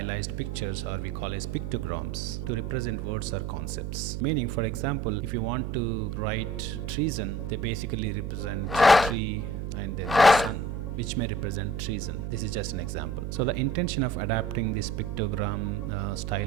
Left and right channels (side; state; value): right; noise; hum, 4 dB below the sound